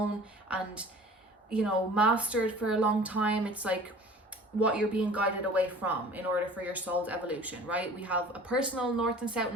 and mastered for a long time. It's like what you're being guided away from in order for your soul's evolution, right? We have a personal North and South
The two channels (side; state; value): both; normal; correlation 0.45